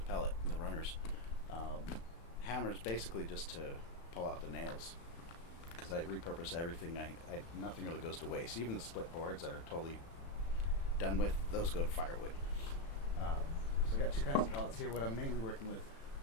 pallet, the runners. Hammers basically just to pull out the nails, because I repurpose everything. Nothing really goes to waste. Even the split boards that are totally done with, those go to firewood. So I got two kinds of pallets here. What I'm mainly working with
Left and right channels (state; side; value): late; right; 36 ms